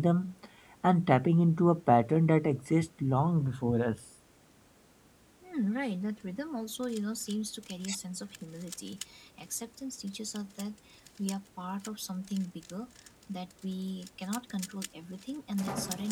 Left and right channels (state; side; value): identical; both; correlation 1.00